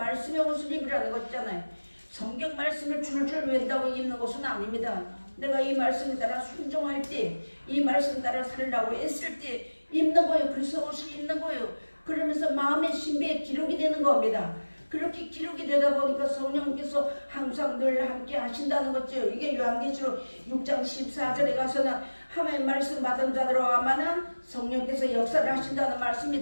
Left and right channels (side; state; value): both; inverted; correlation -1.00